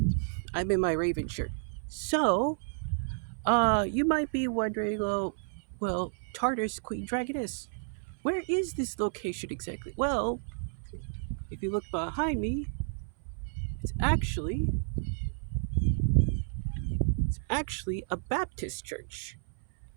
I'm in my Raven shirt. So, you might be wondering, Tartar's Queen Dragoness, where is this location exactly? Well, if you look behind me, it's actually it's actually a Baptist church.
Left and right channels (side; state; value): left; silent; 57 dB below the other